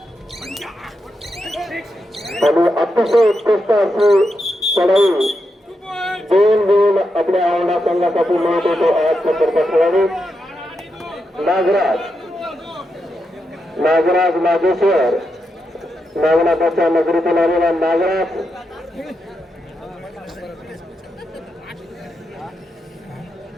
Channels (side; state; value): both; normal; correlation 0.85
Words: आणि अतिशय उत्कृष्ट अशी चढाई 2 गुण आपल्या औंढा संघासाठी मिळत होतो. 8 नंबरचा खेळाडू नागराज नागेश्वर नागनाथाच्या नगरीतून आलेला नागराज